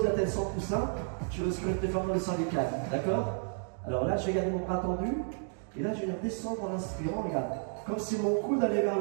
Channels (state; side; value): silent; left; 57 dB below the other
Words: la tête sans coussin, tu risques de te déformer le cervical, d'accord? Alors là, je vais garder mon bras tendu. Et là, je vais descendre en inspirant, regarde. Comme si mon coude allait vers